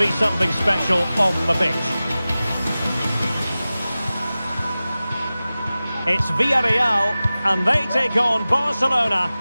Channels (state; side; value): inverted; both; correlation -0.96